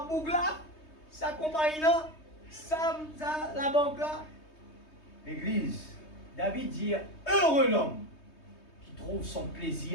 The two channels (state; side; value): late; right; 3.2 ms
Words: boucle là, ça compagnie là, ça la banque là. L'église, David dit, heureux l'homme qui trouve son